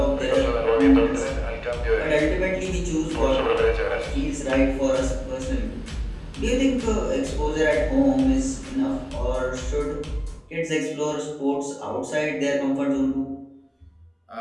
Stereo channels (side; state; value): both; identical; correlation 1.00